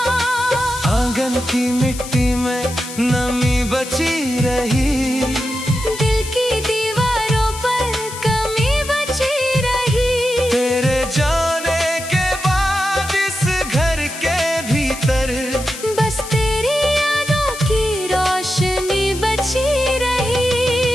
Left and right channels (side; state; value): left; noise; hiss, 11 dB below the sound